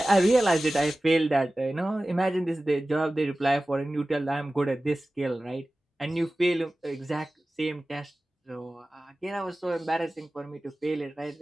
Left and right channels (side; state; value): both; normal; correlation 0.96